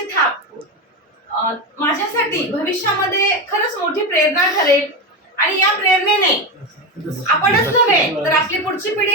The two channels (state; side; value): normal; both; correlation 0.16